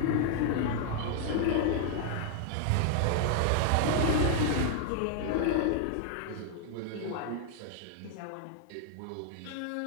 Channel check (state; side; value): different; both; correlation 0.00